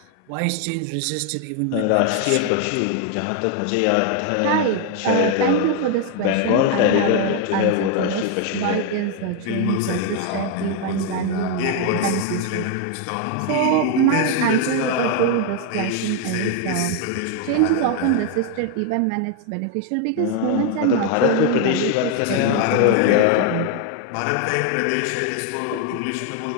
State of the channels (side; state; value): both; different; correlation 0.01